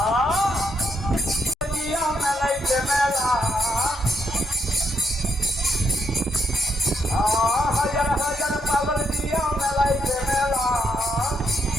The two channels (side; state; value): both; normal; correlation 0.77